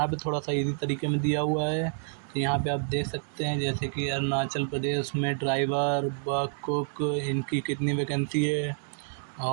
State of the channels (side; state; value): left; silent; digital silence